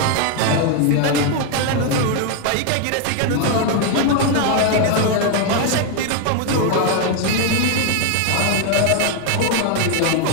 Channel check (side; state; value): both; different; correlation 0.01